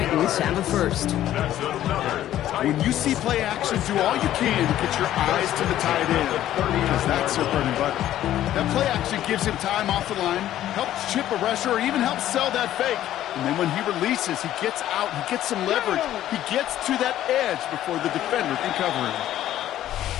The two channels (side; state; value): right; quieter; 12.7 dB